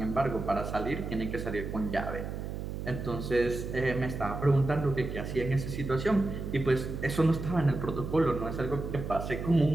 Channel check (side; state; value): right; noise; hum, 6 dB below the sound